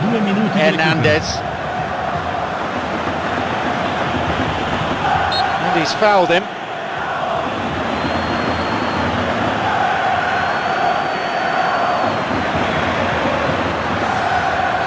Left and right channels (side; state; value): both; identical; correlation 1.00